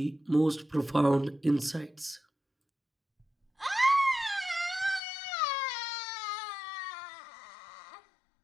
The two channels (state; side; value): drops out; right; at 5.0 s